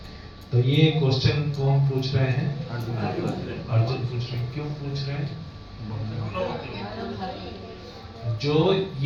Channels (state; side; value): identical; both; correlation 1.00